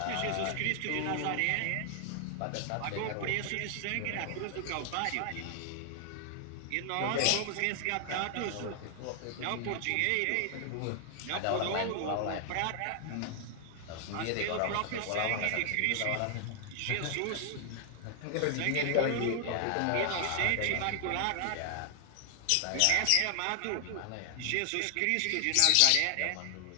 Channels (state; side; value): different; both; correlation 0.00